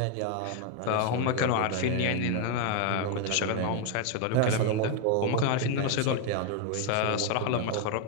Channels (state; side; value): different; both; correlation 0.01